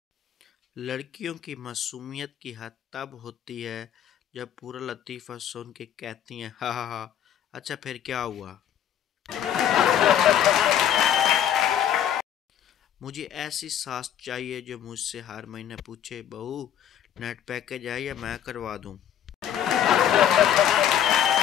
लड़कियों की मासूमियत की हद तब होती है जब पूरा लतीफ़ा सुन के कहती हैं, हा हा हा, अच्छा फिर क्या हुआ। मुझे ऐसी सास चाहिए जो मुझसे हर महीने पूछे, बहू नेट पैकेज है या मैं करवा दूं।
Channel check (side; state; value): right; quieter; 10.0 dB